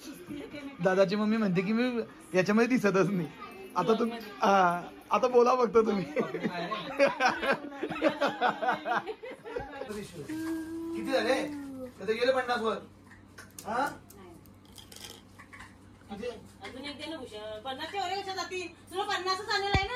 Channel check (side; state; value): both; identical; correlation 1.00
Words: दादाची मम्मी म्हणते की मी याच्यामध्ये दिसतच नाही. आता बोला फक्त तुम्ही. किती झाले? गेले 50 वर. हा अजून एक दे ना भूषण. 50 वर कशा जातील? तुला 50च आलेलं आहे